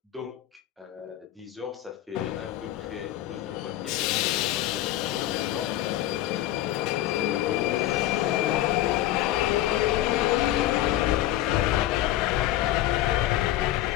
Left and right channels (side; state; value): right; quieter; 14.0 dB